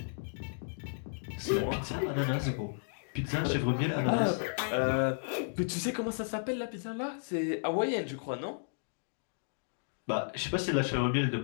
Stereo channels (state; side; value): silent; right; digital silence